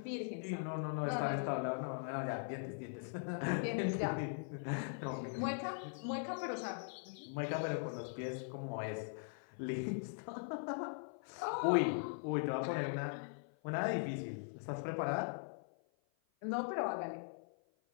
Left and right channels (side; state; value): right; silent; 50 dB below the other